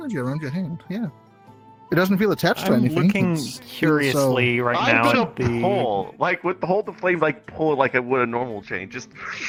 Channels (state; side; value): identical; both; correlation 1.00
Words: around your hand, yeah. It doesn't feel attached to I'm anything. looking It's- curiously right I'm now gonna at the... pull, like with the hold the flame, like pull it like I would a normal chain. Just.